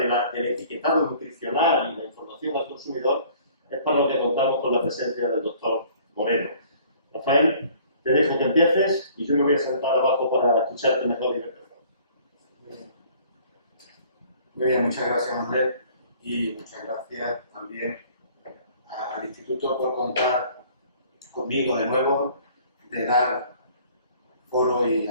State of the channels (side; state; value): both; inverted; correlation -0.54